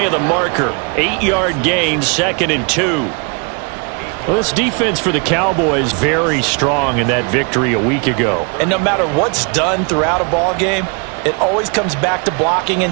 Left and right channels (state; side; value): quieter; left; 34.9 dB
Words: of the marker. 8-yard gain, 2nd and 2. Well, this defense for the Cowboys very strong in that victory a week ago. And no matter what's done throughout a ball game, it always comes back to blocking